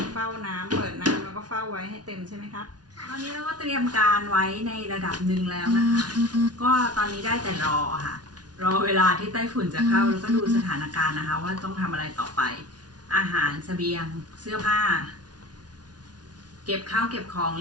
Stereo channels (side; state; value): left; late; 0.69 ms